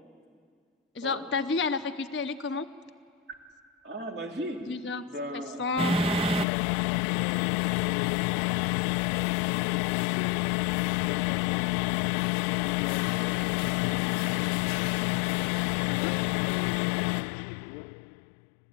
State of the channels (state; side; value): drops out; right; at 6.5 s